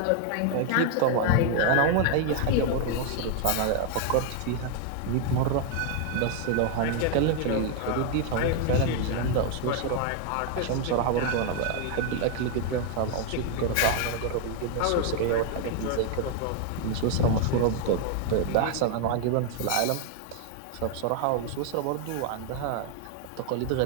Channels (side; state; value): both; different; correlation 0.01